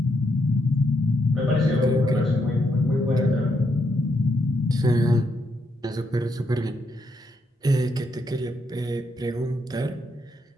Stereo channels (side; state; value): both; normal; correlation 0.78